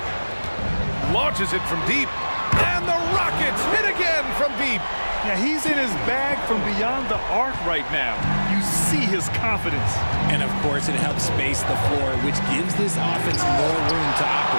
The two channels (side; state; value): both; inverted; correlation -1.00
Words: Launches it from deep. And the Rockets hit again from deep. Yeah, he's in his bag from beyond the arc right now. You see his confidence. And of course, it helps space the floor, which gives this offense more room to